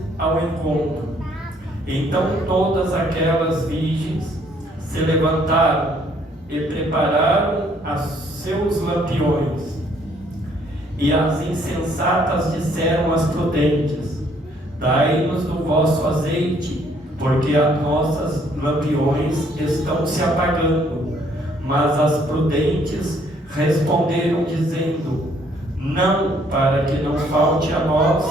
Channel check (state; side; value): normal; both; correlation 0.65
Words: ao encontro. Então todas aquelas virgens se levantaram e prepararam os seus lampiões. E as insensatas disseram às prudentes: dai-nos do vosso azeite, porque as nossas lampiões estão se apagando. Mas as prudentes responderam dizendo: não, para que não falte a